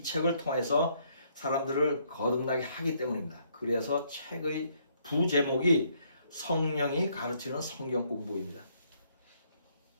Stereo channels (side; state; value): both; inverted; correlation -0.69